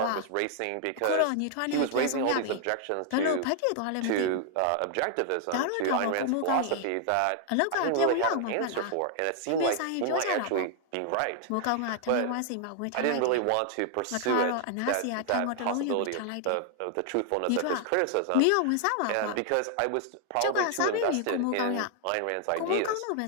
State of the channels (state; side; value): different; both; correlation 0.00